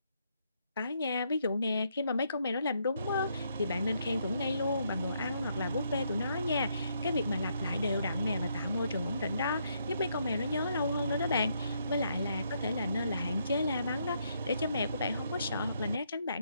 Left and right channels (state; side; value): inverted; both; correlation -0.75